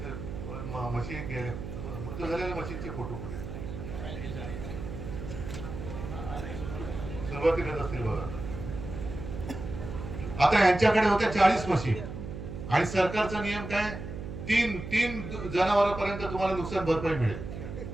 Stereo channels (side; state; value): right; noise; hum, 8 dB below the sound